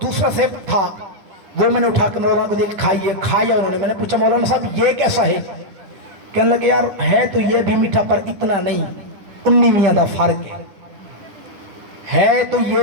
دوسرا سیب تھا، وہ میں نے اٹھا کے مولانا کو دیا کہ کھائیے، کھایا انہوں نے۔ میں نے پوچھا مولانا صاحب یہ کیسا ہے؟ کہنے لگے یار ہے تو یہ بھی میٹھا پر اتنا نہیں، 19 دا فرق ہے تو یہ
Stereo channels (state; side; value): late; left; 9.9 ms